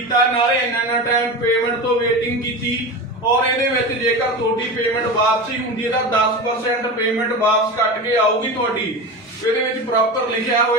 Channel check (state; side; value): normal; both; correlation 0.26